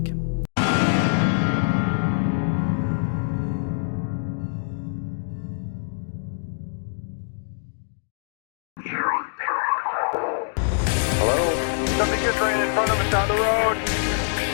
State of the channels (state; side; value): silent; right; digital silence